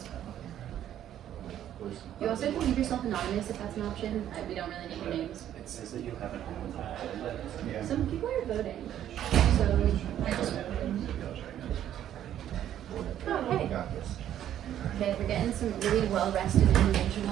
You also can leave yourself anonymous if that's an option. We don't really need your names. It says that you haven't Yeah. Some people are voting. So I just okay. Okay, we're getting some really well-rested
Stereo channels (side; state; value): left; quieter; 11.1 dB